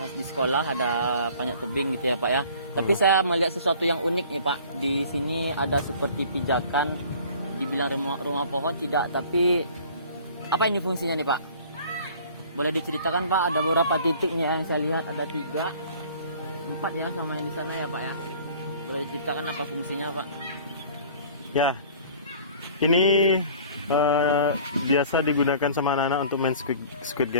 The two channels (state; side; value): inverted; both; correlation -0.49